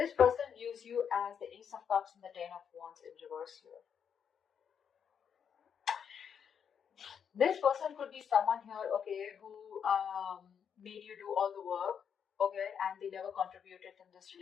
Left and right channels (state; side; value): quieter; right; 7.6 dB